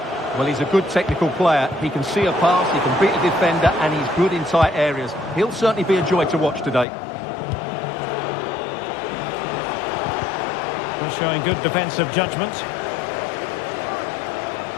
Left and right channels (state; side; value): drops out; right; at 6.9 s